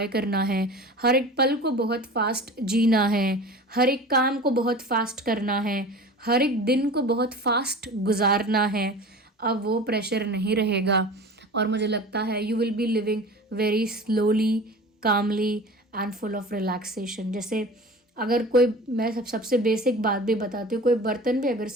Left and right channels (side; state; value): both; normal; correlation 0.37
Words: करना है, हर एक पल को बहुत फास्ट जीना है, हर एक काम को बहुत फास्ट करना है, हर एक दिन को बहुत फास्ट गुजारना है। अब वो प्रेशर नहीं रहेगा, और मुझे लगता है you will be living very slowly, calmly and full of relaxation. जैसे अगर कोई, मैं सबसे बेसिक बात भी बताती हूँ, कोई बर्तन भी अगर